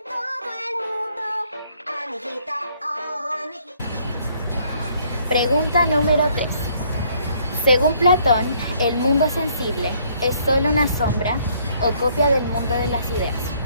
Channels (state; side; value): inverted; both; correlation -0.64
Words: Pregunta número 3. Según Platón, el mundo sensible es solo una sombra o copia del mundo de las ideas.